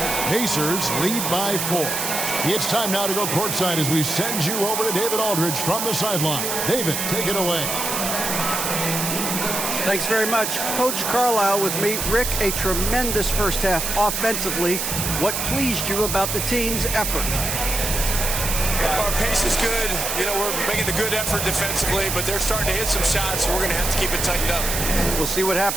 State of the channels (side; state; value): right; noise; hiss, 2 dB below the sound